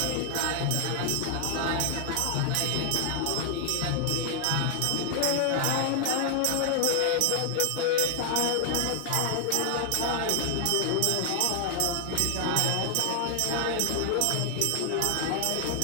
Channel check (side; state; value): both; different; correlation 0.00